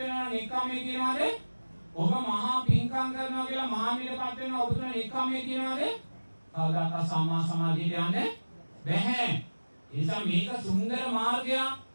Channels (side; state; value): both; inverted; correlation -1.00